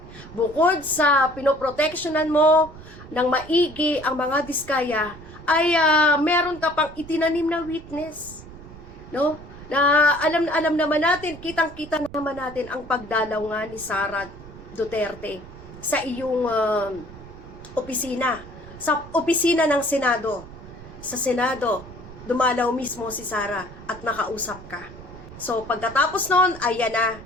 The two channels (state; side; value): noise; right; rumble, 17 dB below the sound